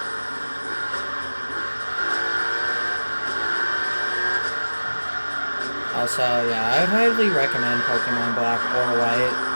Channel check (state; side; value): inverted; both; correlation -1.00